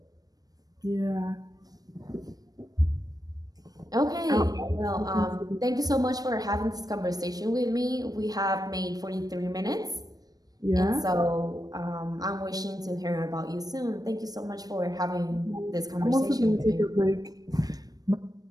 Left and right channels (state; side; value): late; left; 0.18 ms